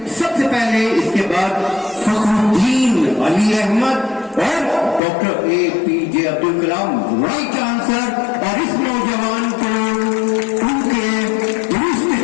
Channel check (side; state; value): right; drops out; at 5.0 s